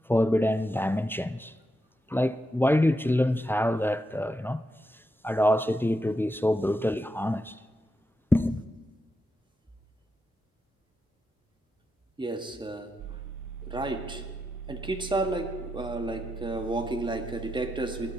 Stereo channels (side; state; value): both; normal; correlation 0.85